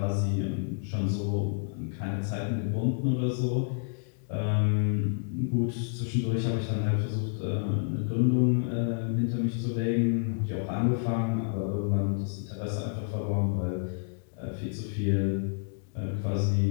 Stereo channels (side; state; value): right; silent; digital silence